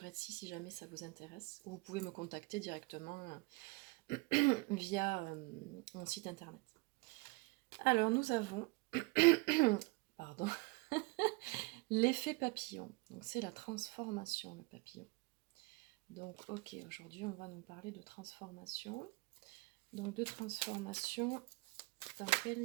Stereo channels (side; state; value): left; quieter; 25.8 dB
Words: Etsy si jamais ça vous intéresse. Ou vous pouvez me contacter directement via mon site internet. Alors nous avons, pardon, l'effet papillon. Donc c'est la transformation, le papillon. Donc ok, aujourd'hui on va nous parler de transformation. Donc de transformation dans